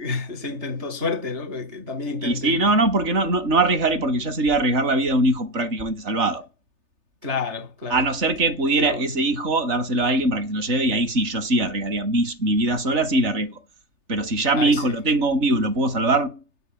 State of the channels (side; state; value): left; late; 3.3 ms